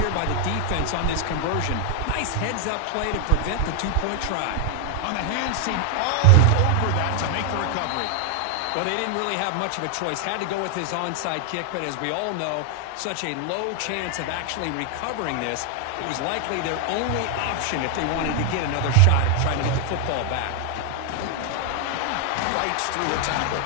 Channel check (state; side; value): different; both; correlation 0.00